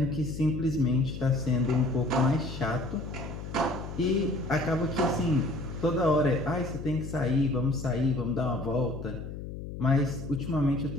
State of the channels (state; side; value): noise; left; hum, 9 dB below the sound